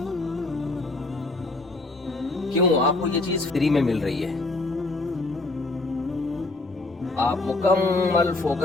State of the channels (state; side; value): quieter; right; 3.1 dB